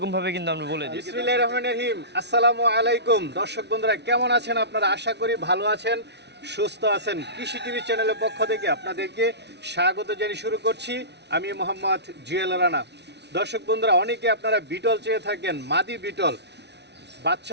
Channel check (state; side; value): late; left; 0.50 ms